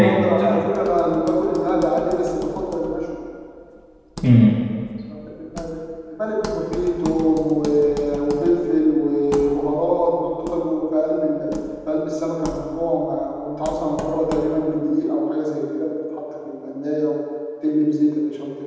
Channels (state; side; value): identical; both; correlation 1.00